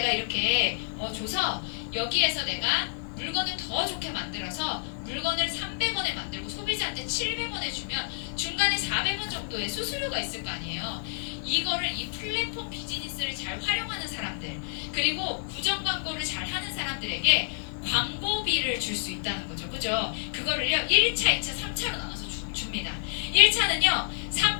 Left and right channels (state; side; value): silent; right; digital silence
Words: 이렇게 줘서 여기에서 내가 물건을 더 좋게 만들어서 물건을 300원에 만들고 소비자한테 700원에 주면 중간에 400원 정도의 수수료가 있을 거 아니에요. 이거를 이 플랫폼 비즈니스를 잘 활용하는 사람들 그리고 구정 광고를 잘 하는 사람들에게 광고비를 줄 수 있다는 거죠. 그죠? 그거를요 1차, 2차, 3차로 나눠서 줍니다. 1차는요